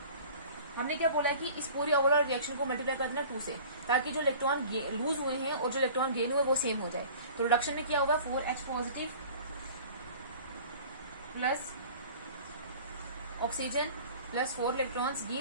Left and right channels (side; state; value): both; inverted; correlation -0.44